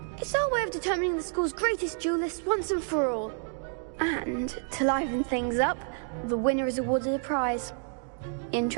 It's our way of determining the school's greatest duelist once and for all. And to liven things up, the winner is awarded a prize.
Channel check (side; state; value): left; silent; 56 dB below the other